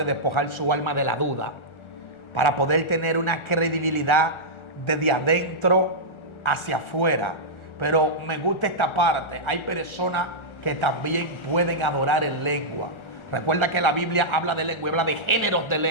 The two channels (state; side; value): late; right; 1.4 ms